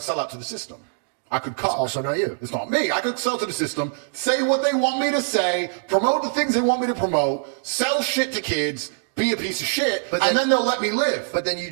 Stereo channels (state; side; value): silent; left; digital silence